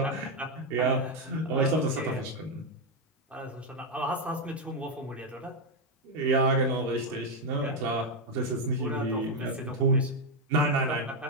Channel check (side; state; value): both; normal; correlation 0.04